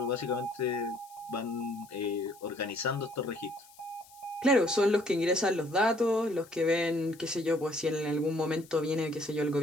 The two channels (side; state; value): left; noise; hiss, 24 dB below the sound